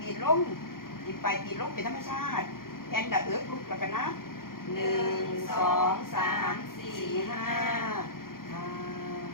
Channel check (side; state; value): right; late; 0.91 ms